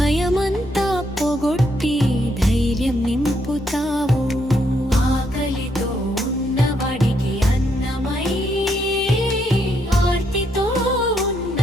పొగొట్టి ధైర్యం నింపుతావు ఆకలితో ఉన్నవాడికి అన్నమై ఆర్తితో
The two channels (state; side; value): normal; both; correlation 0.75